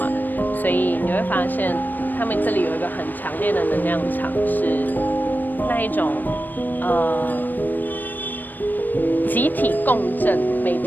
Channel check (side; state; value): right; late; 0.089 ms